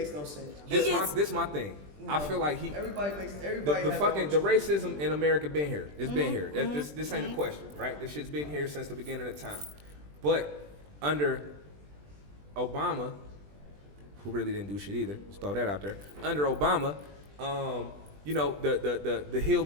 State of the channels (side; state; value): left; late; 20 ms